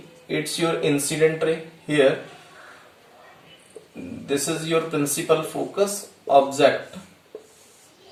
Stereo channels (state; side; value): identical; both; correlation 1.00